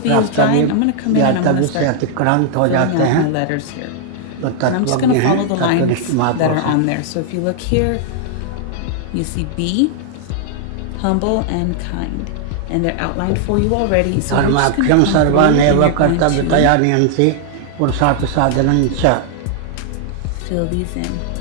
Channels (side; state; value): both; different; correlation 0.00